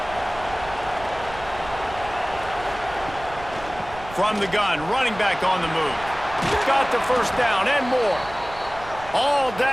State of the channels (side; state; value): right; noise; rumble, 16 dB below the sound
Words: From the gun, running back on the move. Got the first down and more. All